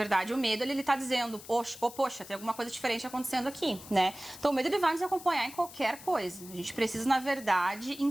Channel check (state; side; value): noise; left; hiss, 16 dB below the sound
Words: o medo, ele tá dizendo, poxa, tem alguma coisa diferente acontecendo aqui, né? Então, o medo, ele vai nos acompanhar em qualquer coisa. A gente precisa, na verdade,